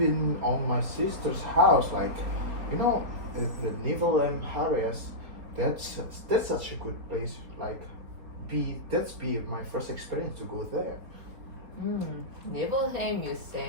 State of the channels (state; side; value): late; left; 4.3 ms